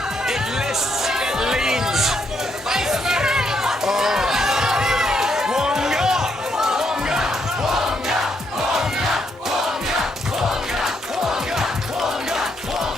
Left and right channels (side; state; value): both; normal; correlation 0.76